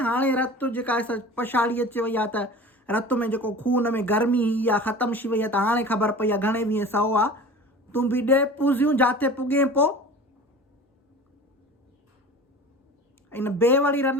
हाणे रत जेका पछाड़ी अची वई आहे त रत में जेको खून में गर्मी इहा ख़तमु थी वई आहे त हाणे ख़बर पई आहे घणे वीह सौ आहे तूं बि ॾे पूज़ियूं जिते पुॻे पोइ इन बेवड़ी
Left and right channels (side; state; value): both; normal; correlation 0.38